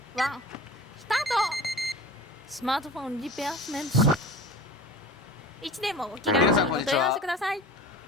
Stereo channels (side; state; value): both; normal; correlation 0.38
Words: 1、スタート。スマートフォンリペアスメント。いつでもお気軽にお問い合わせください。